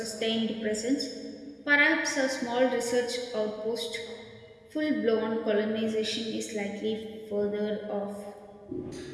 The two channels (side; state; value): both; identical; correlation 1.00